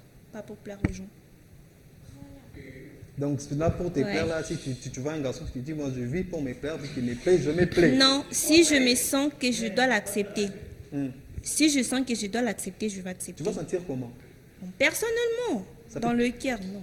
pas pour plaire aux gens. Donc là, pour te plaire, là, si tu vois un garçon qui te dit, moi je vis pour me plaire, puis qu'il me plaît, je me plais. Non, si je me sens que je dois l'accepter, si je sens que je dois l'accepter, je vais accepter. Tu vas sentir comment? Personnellement, dans le cœur, non.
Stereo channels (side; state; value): both; identical; correlation 1.00